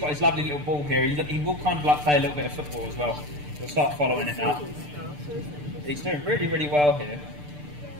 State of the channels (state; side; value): late; left; 6.8 ms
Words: his lovely little ball here. He will kind of like play a little bit of football as well. He'll start following it now. He's doing really, really well here.